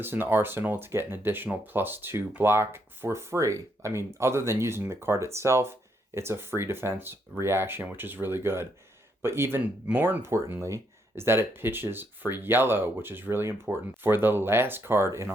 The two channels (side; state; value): both; normal; correlation 0.75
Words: in the arsenal to get an additional +2 block for free. I mean, other than using the card itself, it's a free defense reaction, which is really good. But even more importantly is that it pitches for yellow, which is really important for the last card in